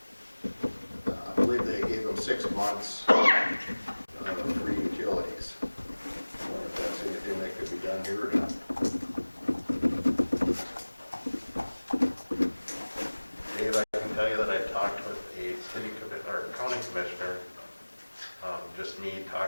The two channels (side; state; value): both; inverted; correlation -1.00